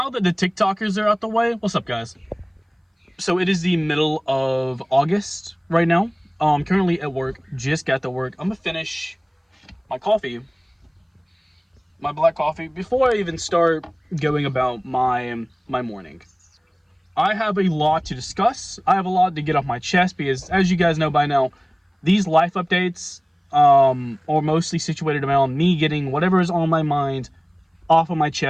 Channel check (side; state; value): both; identical; correlation 1.00